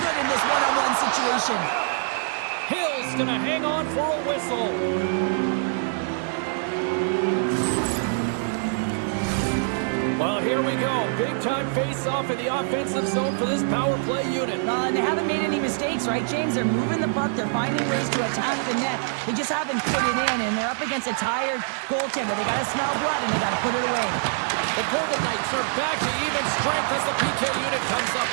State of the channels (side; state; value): left; silent; digital silence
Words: in this one-on-one situation. Hill's gonna hang on for a whistle. Well, here we go. Big-time face-off in the offensive zone for this power play unit. And they haven't made any mistakes, right, James? They're moving the puck. They're finding ways to attack the net. They just haven't put it in, and they're up against a tired goaltender. They got to smell blood, and they got to put it away. The Golden Knights are back to even strength as the PK unit comes up